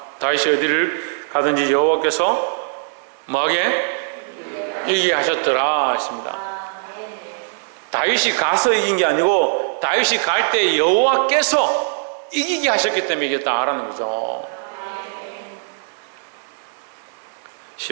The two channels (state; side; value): silent; left; digital silence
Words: 다윗이 어디를 가든지 여호와께서 뭐하게? 이기게 하셨더라 했습니다. 다윗이 가서 이긴 게 아니고 다윗이 갈 때 여호와께서 이기게 하셨기 때문에 이겼다라는 거죠.